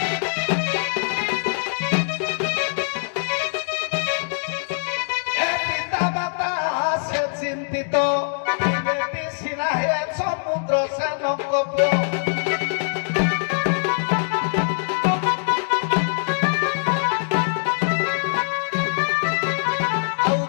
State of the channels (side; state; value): right; silent; digital silence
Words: পিতা মাতা সে চিন্তিত বেটি সিনা হে সমুদ্র সেনঙ্ক ଆଉ